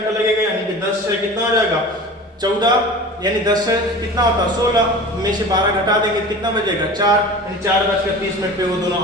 लगेगा, यानी कि 10 से कितना हो जाएगा 14, यानी 10 से कितना होता है 16 में से 12 घटा देंगे, कितना बचेगा 4, यानी 4:30 पे वो दोनों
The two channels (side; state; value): both; normal; correlation 0.37